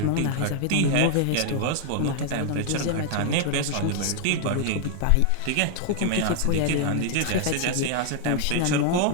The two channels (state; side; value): different; both; correlation 0.00